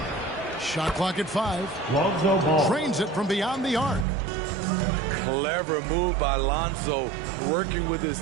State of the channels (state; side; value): drops out; left; at 4.0 s